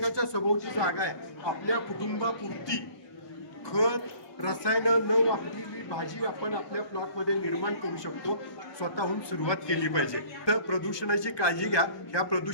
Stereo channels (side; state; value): right; late; 1.2 ms